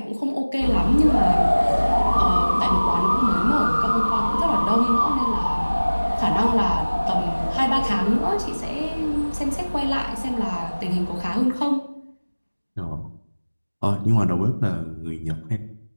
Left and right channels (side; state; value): both; inverted; correlation -1.00